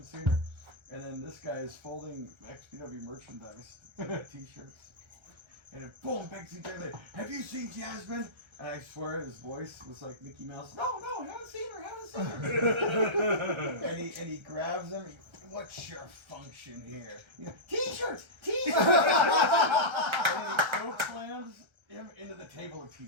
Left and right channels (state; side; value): late; left; 1.3 ms